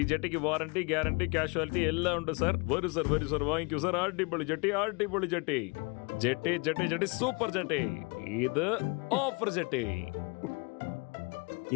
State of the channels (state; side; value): quieter; right; 31.0 dB